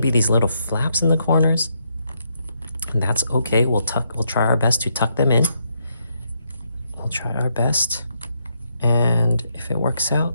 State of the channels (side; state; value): both; inverted; correlation -0.77